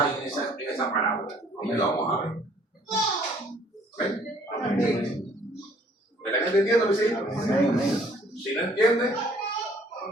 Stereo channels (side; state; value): both; normal; correlation 0.58